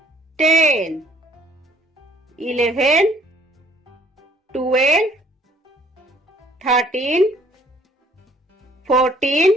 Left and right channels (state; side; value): normal; both; correlation 0.60